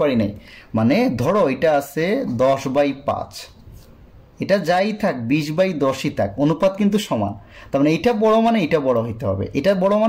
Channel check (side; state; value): both; identical; correlation 1.00